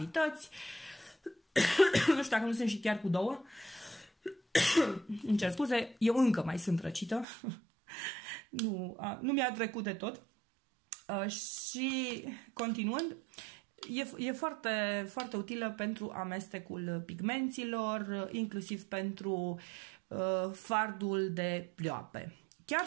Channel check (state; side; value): drops out; left; at 7.2 s